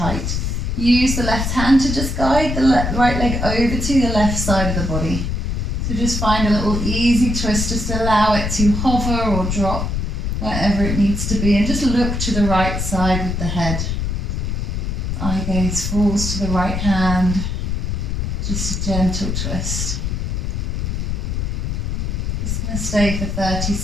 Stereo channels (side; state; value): left; noise; rumble, 1 dB below the sound